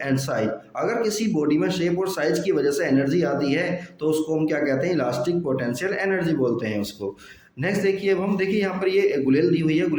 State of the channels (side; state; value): both; identical; correlation 1.00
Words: and size. अगर किसी बॉडी में शेप और साइज की वजह से एनर्जी आती है तो उसको हम क्या कहते हैं, इलास्टिक पोटेंशियल एनर्जी बोलते हैं उसको। नेक्स्ट देखिए, अब हम देखिए यहाँ पर ये गुलेल दी हुई है,